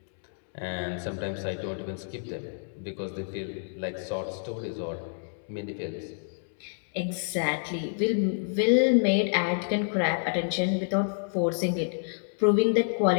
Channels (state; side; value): silent; right; digital silence